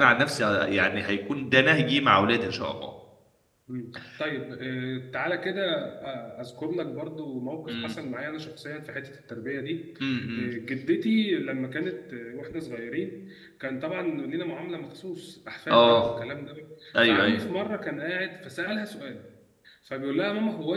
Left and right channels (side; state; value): both; identical; correlation 1.00